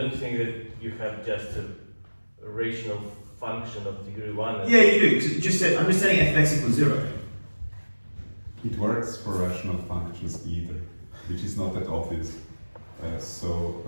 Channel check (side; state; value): both; inverted; correlation -1.00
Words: think that you have just a rational function of degree 1. Yeah, you do. So just set, I'm just setting f of x equals 0. It works for rational functions either, which is not that obvious.